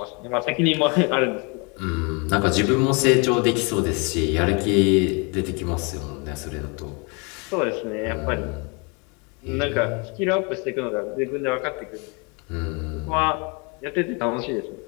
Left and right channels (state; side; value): quieter; right; 32.3 dB